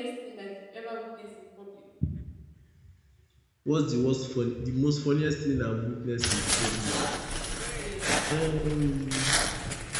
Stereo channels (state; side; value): identical; both; correlation 1.00